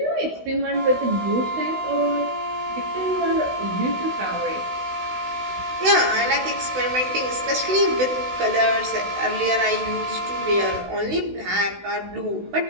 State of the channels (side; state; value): left; late; 16 ms